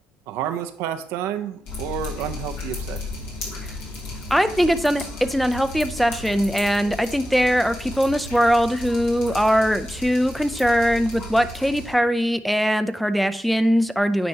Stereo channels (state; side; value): normal; both; correlation 0.92